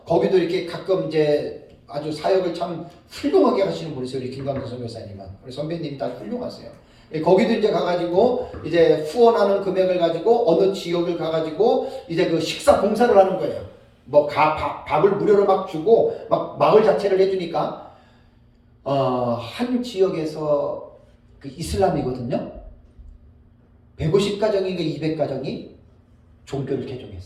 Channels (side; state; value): both; identical; correlation 1.00